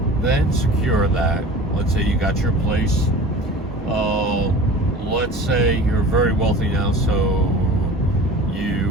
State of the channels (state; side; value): normal; both; correlation 0.39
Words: then secure that, let's say you got your place, let's say you're very wealthy now, so